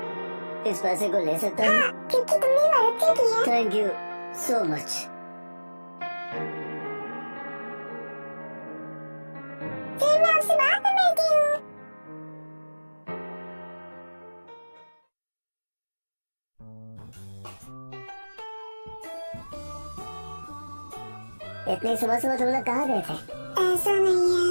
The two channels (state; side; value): inverted; both; correlation -1.00